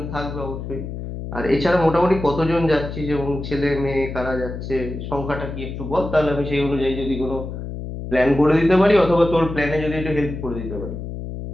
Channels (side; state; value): left; noise; hum, 8 dB below the sound